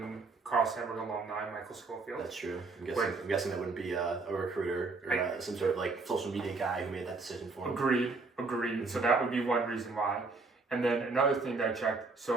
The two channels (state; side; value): quieter; left; 3.9 dB